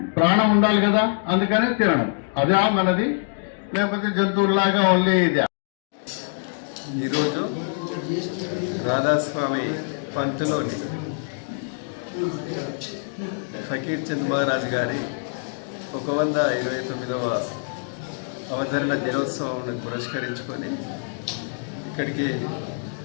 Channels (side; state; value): right; silent; digital silence